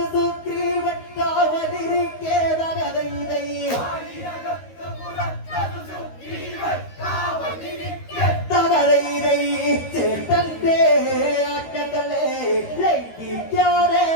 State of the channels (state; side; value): late; right; 13 ms